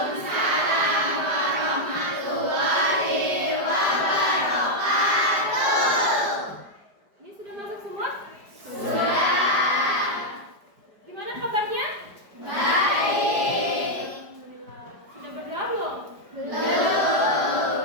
warahmatullahi wabarakatuh. Ini sudah masuk semua? Sudah. Gimana kabarnya? Baik. Alhamdulillah. Sudah berdoa belum?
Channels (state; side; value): late; left; 5.0 ms